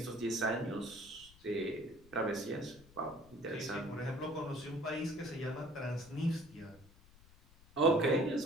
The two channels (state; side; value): noise; left; rumble, 24 dB below the sound